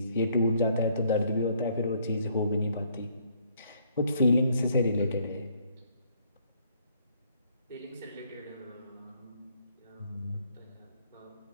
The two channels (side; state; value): both; inverted; correlation -0.66